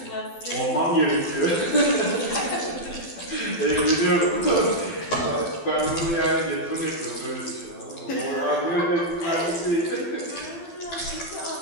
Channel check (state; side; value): late; right; 12 ms